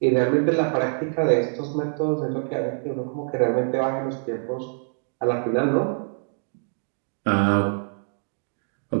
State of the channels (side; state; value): left; silent; digital silence